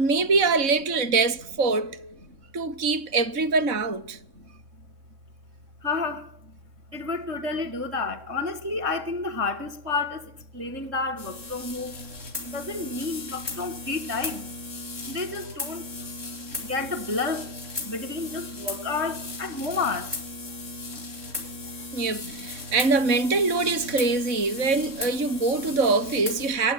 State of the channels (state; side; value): late; left; 3.6 ms